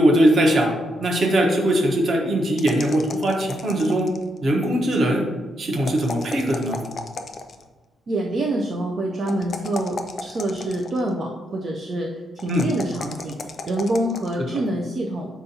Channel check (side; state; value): both; normal; correlation 0.80